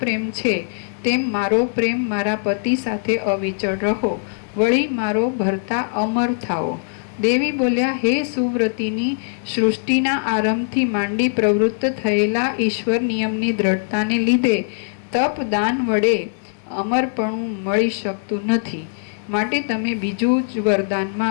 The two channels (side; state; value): right; silent; 65 dB below the other